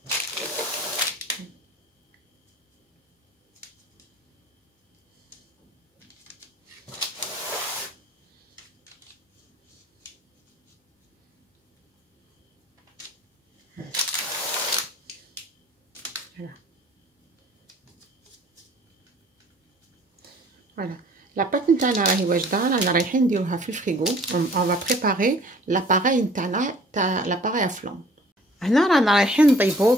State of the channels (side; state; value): both; normal; correlation 0.52